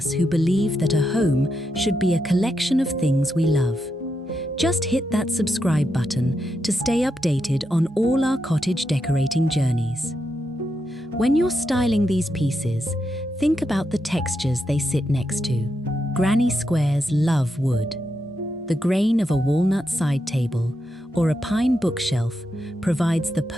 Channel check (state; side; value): normal; both; correlation 0.84